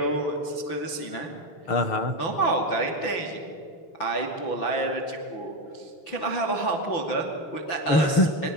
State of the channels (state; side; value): late; right; 6.0 ms